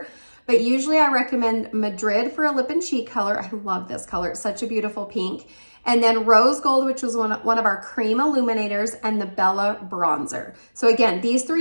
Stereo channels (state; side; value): inverted; both; correlation -1.00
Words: But usually I recommend Madrid for a lip and cheek color. I love this color, it's such a beautiful pink. And then Rose Gold, which was one of our cream illuminators, and the Bella Bronzer. So again, these